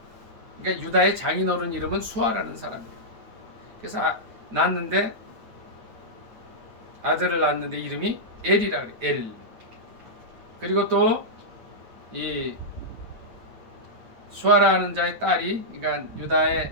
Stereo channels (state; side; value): late; left; 9.0 ms